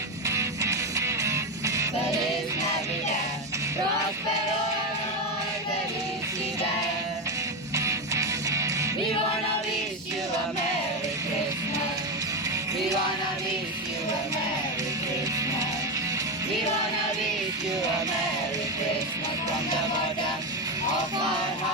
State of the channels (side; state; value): both; normal; correlation 0.13